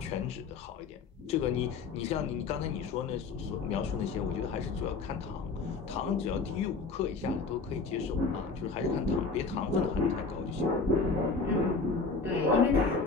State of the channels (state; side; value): quieter; right; 4.4 dB